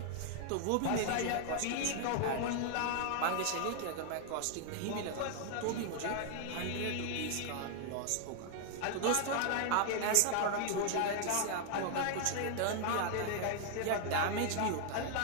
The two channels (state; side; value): different; both; correlation 0.00